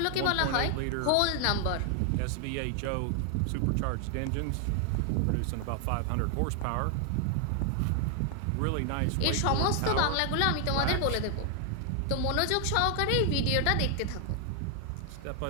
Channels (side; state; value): both; different; correlation 0.00